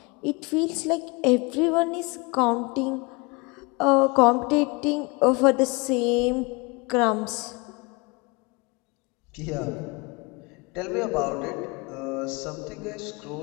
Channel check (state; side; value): quieter; right; 27.7 dB